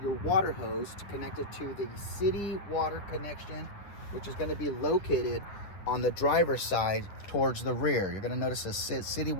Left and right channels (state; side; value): late; right; 9.8 ms